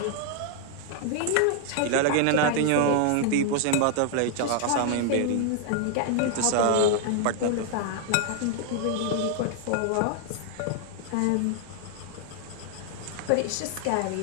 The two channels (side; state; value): both; different; correlation 0.00